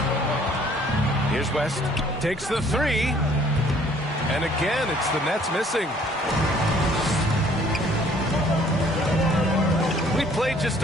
Here's West. Takes the 3. And again, it's the Nets missing. We played just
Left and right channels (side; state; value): both; normal; correlation 0.58